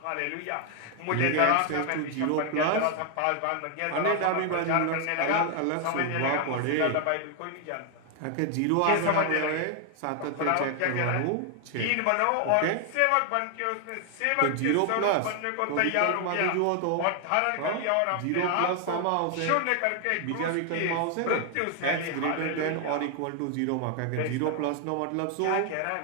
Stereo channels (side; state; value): both; different; correlation 0.00